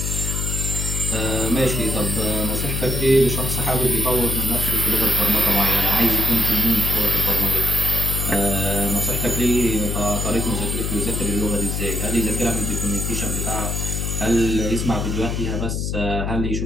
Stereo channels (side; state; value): left; noise; hum, 1 dB below the sound